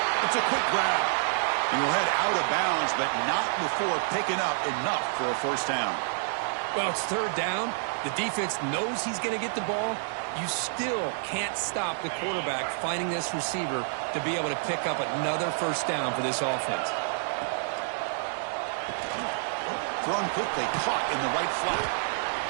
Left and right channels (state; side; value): silent; left; 59 dB below the other